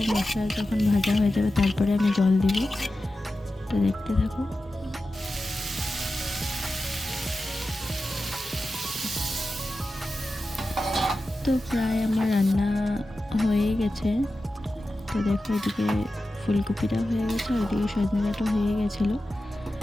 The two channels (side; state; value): both; normal; correlation 0.93